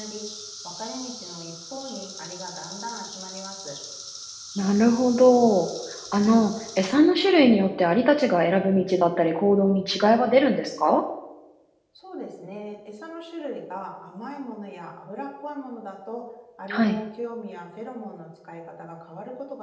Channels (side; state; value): both; identical; correlation 1.00